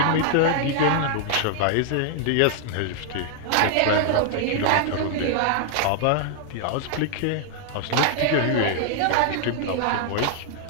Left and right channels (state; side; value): different; both; correlation 0.00